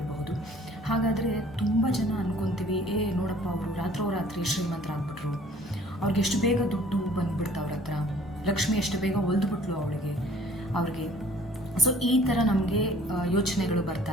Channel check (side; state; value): both; normal; correlation 0.54